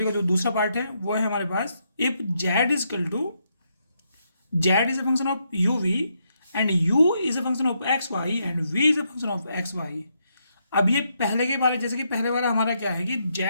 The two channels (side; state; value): both; inverted; correlation -0.78